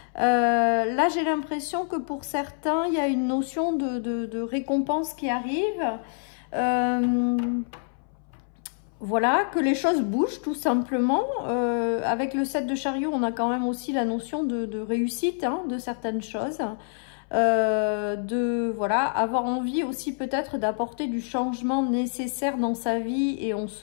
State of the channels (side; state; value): right; silent; 61 dB below the other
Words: Là, j'ai l'impression que pour certains, il y a une notion de récompense qui arrive. Voilà, que les choses bougent tout simplement. Avec le 7 de chariot, on a quand même aussi la notion de réussite hein, de certaines choses. Voilà, avoir envie aussi peut-être d'apporter du changement nécessaire dans sa vie et on